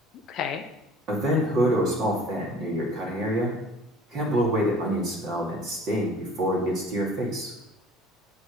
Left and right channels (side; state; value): both; normal; correlation 0.49